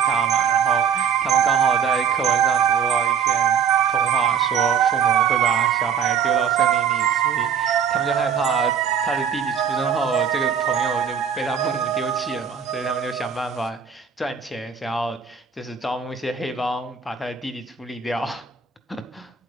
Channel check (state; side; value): quieter; left; 7.3 dB